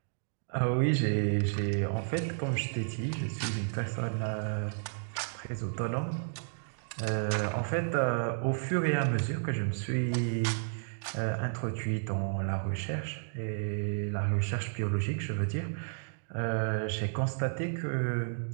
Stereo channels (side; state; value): left; silent; digital silence